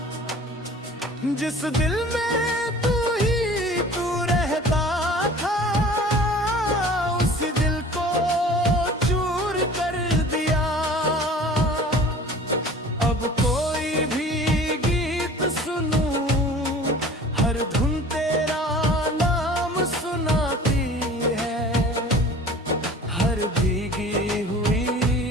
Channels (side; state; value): both; normal; correlation 0.45